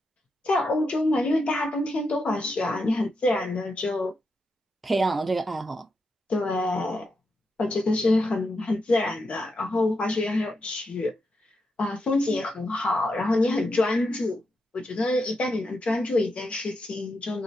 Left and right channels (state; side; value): normal; both; correlation 0.85